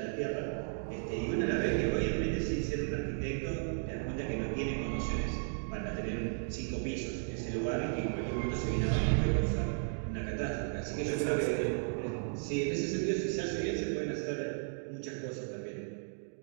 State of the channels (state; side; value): silent; left; digital silence